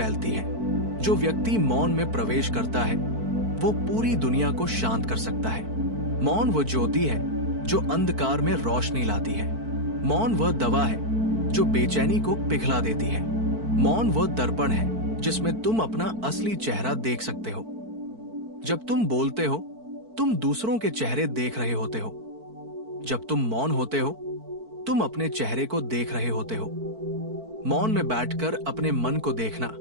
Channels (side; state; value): left; late; 4.5 ms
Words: है। जो व्यक्ति मौन में प्रवेश करता है वो पूरी दुनिया को शांत कर सकता है। मौन वो ज्योति है जो अंधकार में रोशनी लाती है। मौन वह दवा है जो बेचैनी को पिघला देती है। मौन वो दर्पण है जिसमें तुम अपना असली चेहरा देख सकते हो। जब तुम बोलते हो, तुम दूसरों के चेहरे देख रहे होते हो। जब तुम मौन होते हो, तुम अपने चेहरे को देख रहे होते हो। मौन में बैठकर अपने मन को देखना,